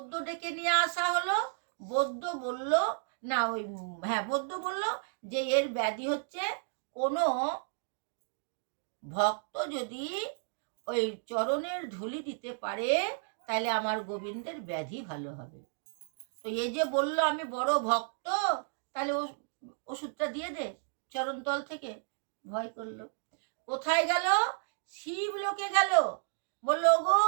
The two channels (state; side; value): silent; left; digital silence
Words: ডেকে নিয়ে আসা হলো। বৈদ্য বলল, না ওই বৈদ্য বলল যে এর ব্যাধি হচ্ছে কোনো ভক্ত যদি ওই চরণের ধুলি দিতে পারে তাহলে আমার গোবিন্দের ব্যাধি ভালো হবে। তো এই যে বলল আমি বড় ভক্ত, তাহলে ওষুধটা দিয়ে দে চরণতল থেকে। ভয় করলো। কোথায় গেল? শিব লোকে গেল। বললো, গো